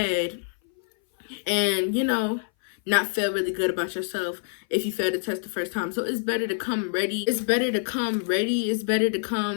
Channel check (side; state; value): right; silent; 59 dB below the other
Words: and not feel really good about yourself if you fail the test the first time. So it's better to come ready. It's better to come ready. It's better to